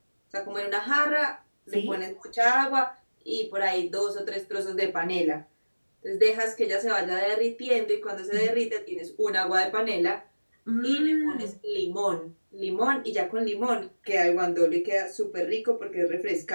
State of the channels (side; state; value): both; inverted; correlation -1.00